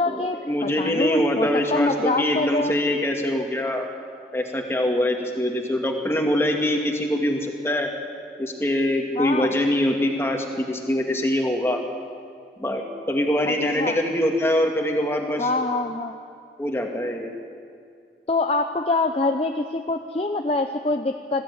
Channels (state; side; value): normal; both; correlation 0.58